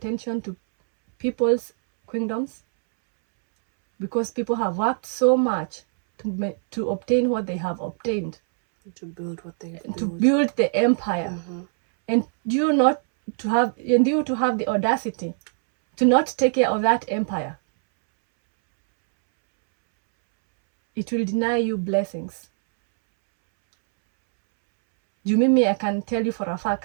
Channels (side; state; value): left; silent; 63 dB below the other